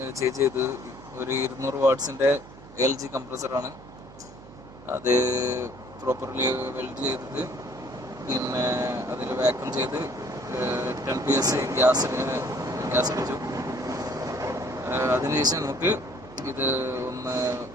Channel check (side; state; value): right; noise; hum, 19 dB below the sound